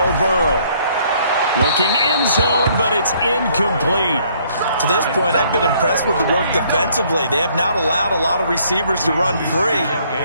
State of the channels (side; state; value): both; inverted; correlation -0.64